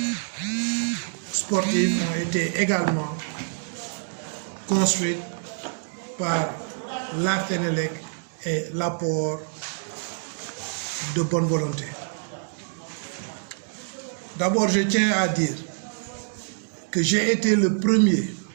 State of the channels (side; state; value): left; silent; digital silence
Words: sportives ont été également construites par la Sénélec et l'apport de bonne volonté. D'abord, je tiens à dire que j'ai été le premier